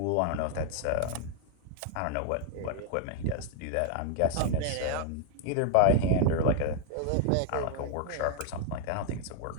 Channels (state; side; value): different; both; correlation 0.00